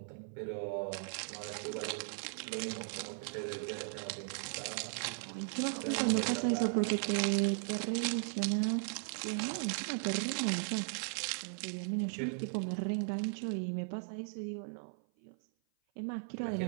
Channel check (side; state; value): left; silent; 53 dB below the other